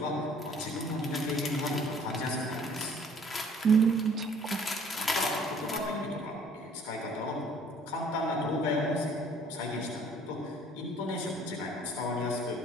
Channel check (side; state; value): both; normal; correlation 0.56